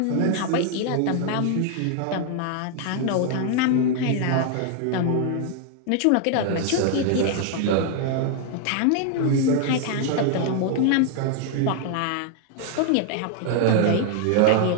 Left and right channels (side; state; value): both; different; correlation 0.00